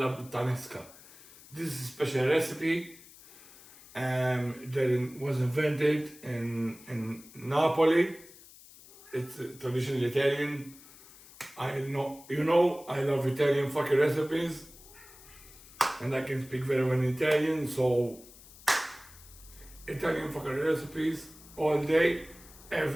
puttanesca. This is a special recipe that was invented in Napoli. It's traditional Italian. I love Italian fucking recipes. And I can speak very well in Italian, so Italian fucking recipes all day,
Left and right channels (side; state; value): left; noise; hiss, 21 dB below the sound